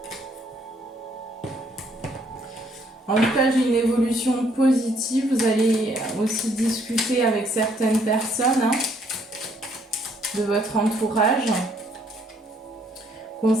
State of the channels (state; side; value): normal; both; correlation 0.67